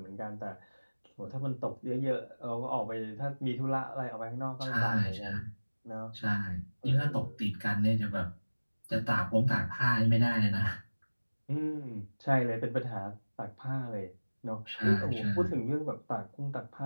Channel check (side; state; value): both; inverted; correlation -1.00